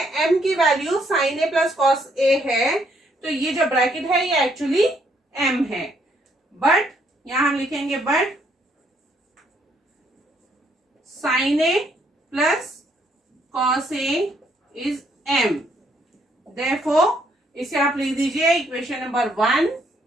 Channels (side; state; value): both; normal; correlation 0.70